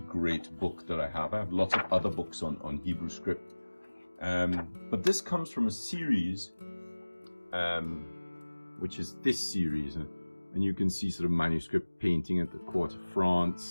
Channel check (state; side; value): inverted; both; correlation -1.00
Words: great book that I have. I have lots of other books on Hebrew script, but this comes from a series, which is this series, and you can see sort of manuscript painting at the court of